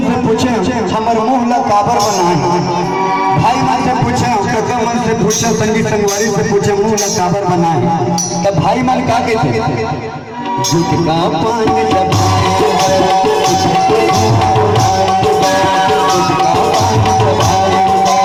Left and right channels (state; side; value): identical; both; correlation 1.00